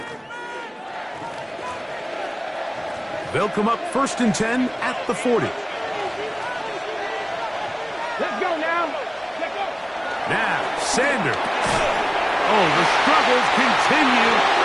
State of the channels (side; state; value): both; identical; correlation 1.00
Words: They'll come up 1st and 10 at the 40. Let's go now. Let's go. Now, Sanders. Oh, the struggles continue.